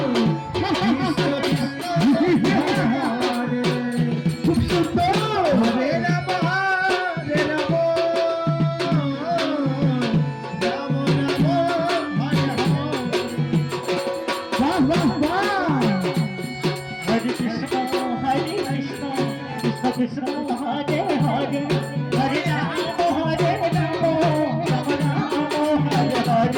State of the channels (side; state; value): both; identical; correlation 1.00